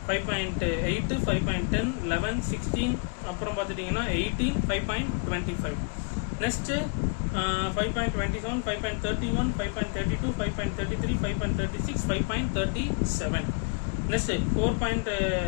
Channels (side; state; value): right; quieter; 36.2 dB